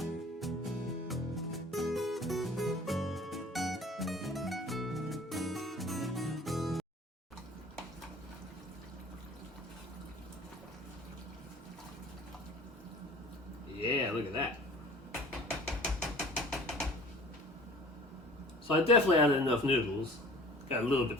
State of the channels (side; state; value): both; normal; correlation 0.46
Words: Yeah, look at that. So I definitely added enough noodles. Got a little bit